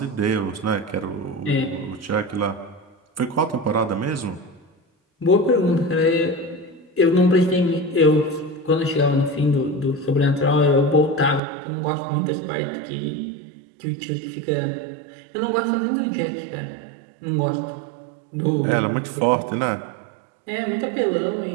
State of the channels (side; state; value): left; drops out; at 11.4 s